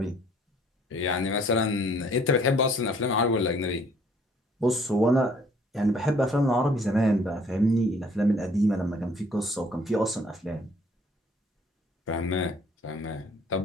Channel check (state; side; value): normal; both; correlation 0.59